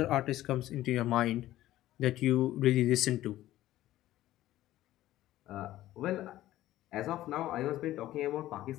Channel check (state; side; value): quieter; right; 14.7 dB